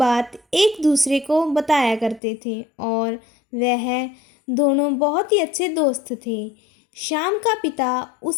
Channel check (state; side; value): drops out; right; at 2.2 s